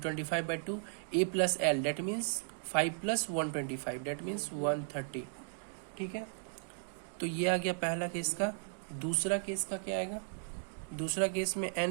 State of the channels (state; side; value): silent; left; digital silence